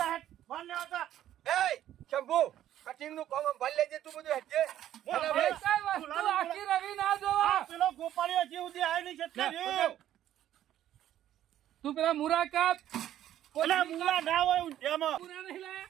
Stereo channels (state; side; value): quieter; left; 12.0 dB